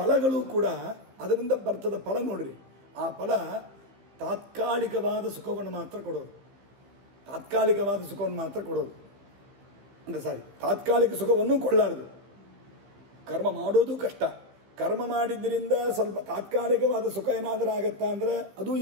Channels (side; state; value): left; late; 15 ms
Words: ಕೂಡ ಅದರಿಂದ ಬರ್ತದ ಫಲ ನೋಡ್ರಿ. ಆ ಫಲ ತಾತ್ಕಾಲಿಕವಾದ ಸುಖವನ್ನು ಮಾತ್ರ ಕೊಡೋದು. ತಾತ್ಕಾಲಿಕವಾದ ಸುಖವನ್ನು ಮಾತ್ರ ಕೊಡೋದು ಅಂದರೆ ತಾತ್ಕಾಲಿಕ ಸುಖವನ್ನು ಕೊಳ್ಳಾರದು. ಕರ್ಮ ಮಾಡೋದು ಕಷ್ಟ. ಕರ್ಮ ಮಾಡಿದ್ದರಿಂದ ಸ್ವಲ್ಪ ತಾತ್ಕಾಲಿಕವಾದ ಸುಖ ಏನಾದರೂ ಆಗತ್ತಾ ಅಂದರೆ ಅದೂ